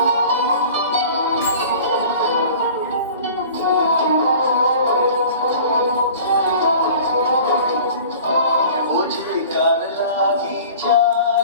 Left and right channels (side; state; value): both; inverted; correlation -0.44